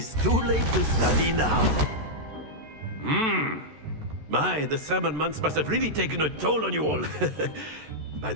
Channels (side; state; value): left; late; 13 ms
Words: too late to study now. My, the summer months must have really taken a toll on you all. By